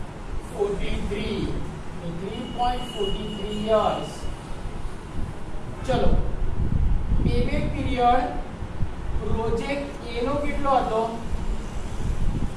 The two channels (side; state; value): both; identical; correlation 1.00